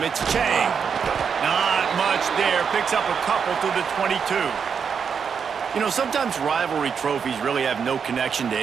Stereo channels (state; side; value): quieter; left; 6.6 dB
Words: it's Chang. Not much there, picks up a couple to the 22. You know, sometimes rivalry trophies really have no connection to